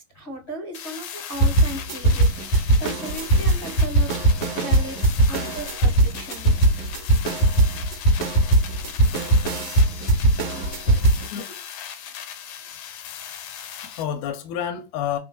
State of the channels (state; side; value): late; right; 12 ms